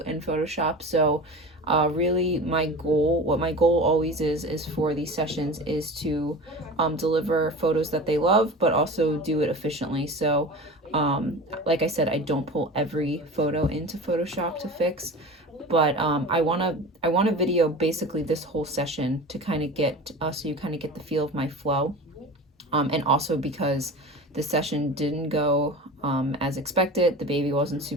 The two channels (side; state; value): both; normal; correlation 0.33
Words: in Photoshop. So really what my goal always is for these sessions is to deliver photos that they love, but also do it efficiently. So like I said, I don't pull every photo into Photoshop to fix, but I want to video basically this whole session to kind of get so you kind of get the feel of my flow, and also because the session didn't go as expected. The baby wasn't